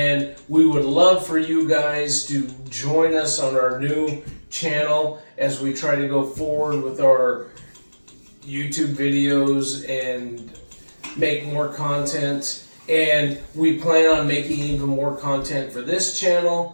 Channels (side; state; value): both; inverted; correlation -1.00